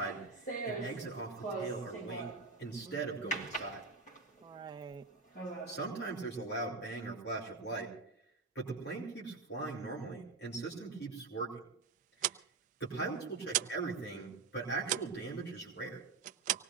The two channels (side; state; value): left; quieter; 4.3 dB